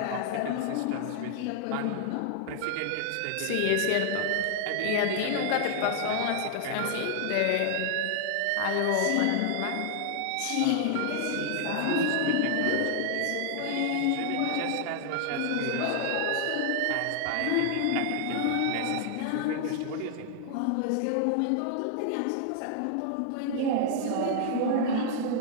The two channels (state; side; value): different; both; correlation 0.00